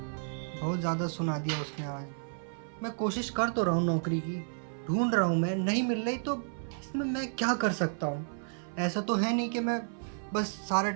बहुत ज़्यादा सुना दिया उसने आज। मैं कोशिश कर तो रहा हूँ नौकरी की, ढूंढ रहा हूँ मैं, नहीं मिल रही तो इसमें मैं क्या कर सकता हूँ? ऐसा तो है नहीं कि मैं बस सारा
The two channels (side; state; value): left; silent; 57 dB below the other